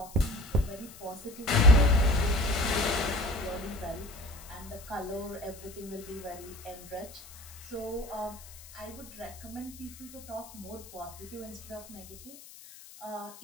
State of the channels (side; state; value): left; noise; hiss, 18 dB below the sound